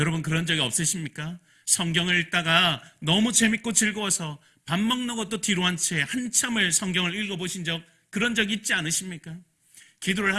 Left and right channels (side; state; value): both; identical; correlation 1.00